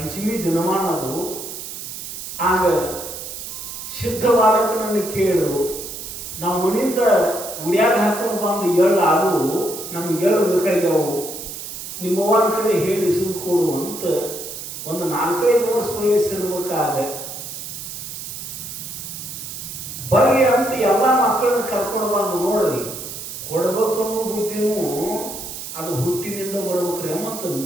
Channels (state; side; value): noise; right; hiss, 9 dB below the sound